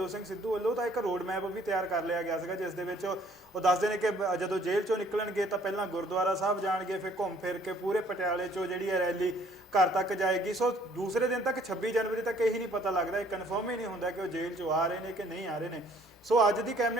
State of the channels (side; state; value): both; normal; correlation 0.60